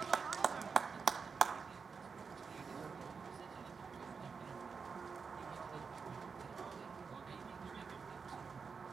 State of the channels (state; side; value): quieter; left; 5.4 dB